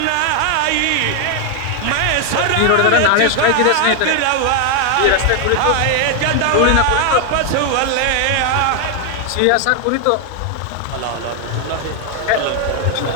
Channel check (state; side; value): different; both; correlation 0.00